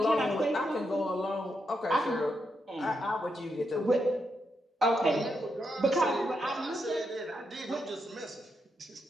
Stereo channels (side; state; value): both; normal; correlation 0.82